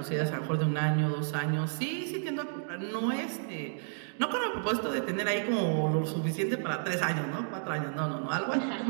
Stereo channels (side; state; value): left; silent; digital silence